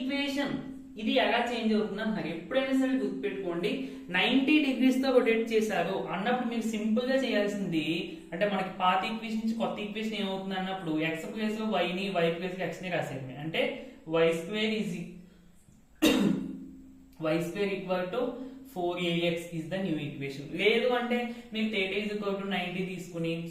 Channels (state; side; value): identical; both; correlation 1.00